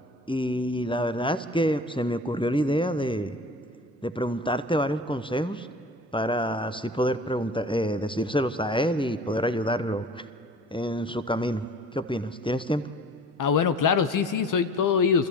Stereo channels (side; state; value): both; normal; correlation 0.43